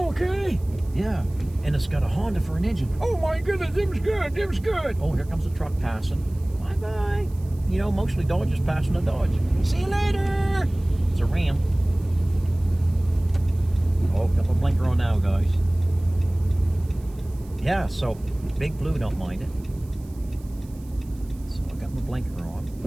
okay. Yeah. And it's got a Honda for an engine. Oh my goodness, them's good. Oh, here comes a truck passing. Bye-bye. You know, mostly Dodge is passing a Dodge. See you later. It's a Ram. Oh, got my blinker on now, guys. Yeah, so Big Blue don't mind it. So I got my blinker on.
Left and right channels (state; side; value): noise; right; hiss, 27 dB below the sound